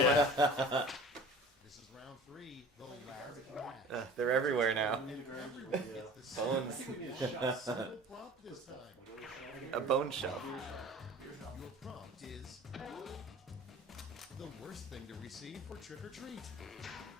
This is round three. The last match. They're everywhere now. It's the Bones. single prompt this time. A bone shelf. the worst thing to receive for trick or treat?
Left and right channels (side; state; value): both; normal; correlation 0.42